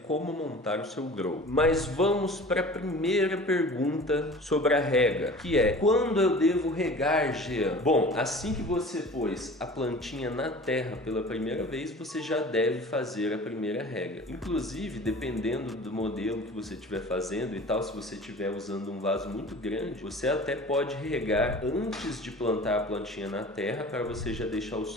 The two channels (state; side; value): normal; both; correlation 0.41